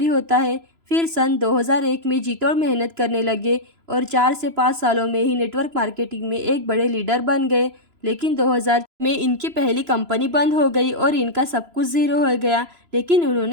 होता है। फिर सन 2001 में जी तोड़ मेहनत करने लगे और 4 से 5 सालों में ही नेटवर्क मार्केटिंग में एक बड़े लीडर बन गए। लेकिन 2000 में इनकी पहली कंपनी बंद हो गई और इनका सब कुछ ज़ीरो हो गया। लेकिन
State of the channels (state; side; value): late; left; 3.0 ms